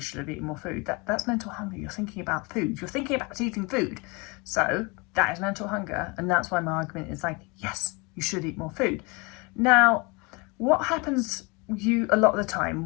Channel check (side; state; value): right; quieter; 28.2 dB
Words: eaten more food, that's mental hunger. You're thinking about food. You're thinking about eating food. So that is mental hunger. And that's why my argument is like, yes, you should eat more food. Now, what happens a lot of the